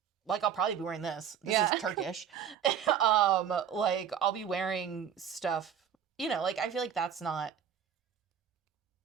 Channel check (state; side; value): quieter; left; 8.4 dB